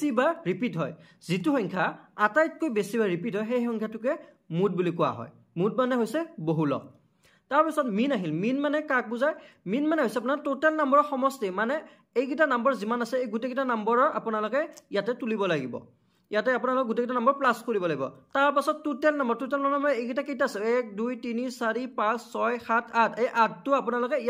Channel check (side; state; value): both; identical; correlation 1.00